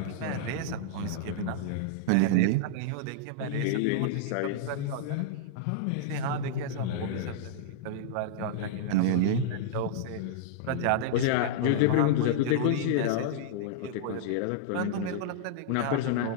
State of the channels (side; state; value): both; different; correlation -0.01